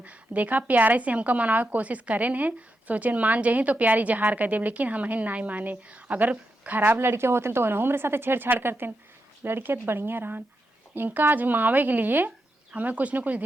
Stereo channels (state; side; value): normal; both; correlation 0.86